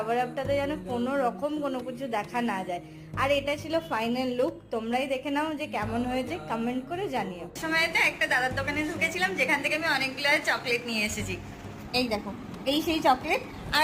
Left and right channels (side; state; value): both; identical; correlation 1.00